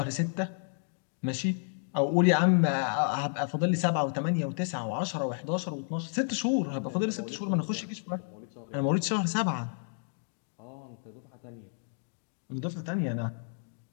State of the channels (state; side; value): silent; right; digital silence